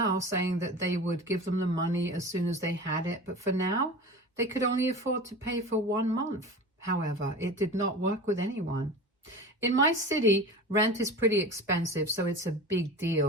saying that they would give them the money as soon as they had it, but for now, they could only afford to pay for 1 month. However, it did not work with anyone. In my city, rent is pretty expensive, so it's a big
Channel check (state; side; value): normal; both; correlation 0.33